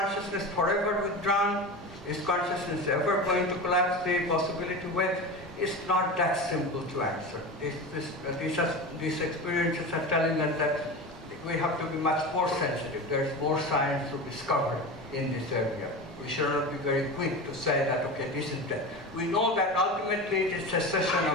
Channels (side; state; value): both; normal; correlation 0.27